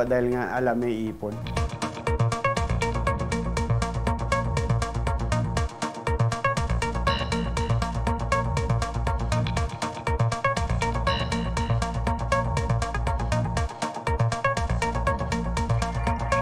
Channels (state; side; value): identical; both; correlation 1.00